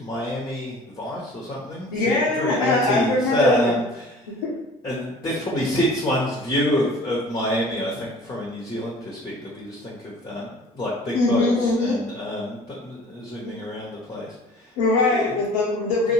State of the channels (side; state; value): both; normal; correlation 0.46